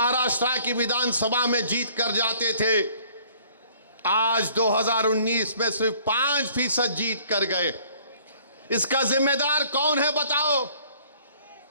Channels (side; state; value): both; inverted; correlation -0.56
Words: की विधानसभा में जीत कर जाते थे। आज 2019 में सिर्फ 5% जीत कर गए। इसका जिम्मेदार कौन है बताओ?